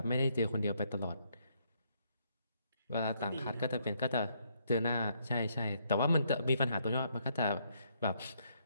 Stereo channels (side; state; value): both; inverted; correlation -0.72